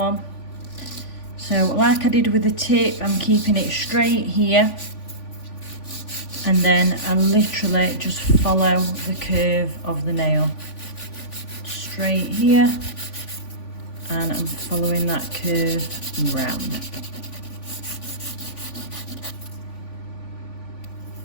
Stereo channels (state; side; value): late; right; 3.5 ms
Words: So like I did with the tip, I'm keeping it straight here, and then I literally just follow the curve of the nail. Straight here, and I'm following that curve round.